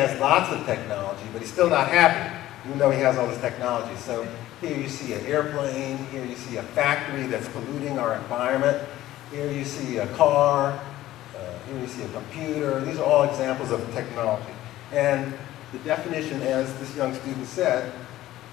lots of technology, but he's still not happy, even though he has all this technology. So here you see an airplane, here you see a factory that's polluting our environment, here you see a car, here you see a computer. These are all examples of technology. And the definition, as this young student said,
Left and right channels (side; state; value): right; quieter; 14.9 dB